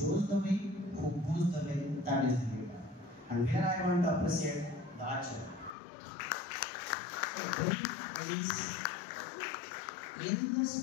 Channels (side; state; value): right; drops out; at 5.7 s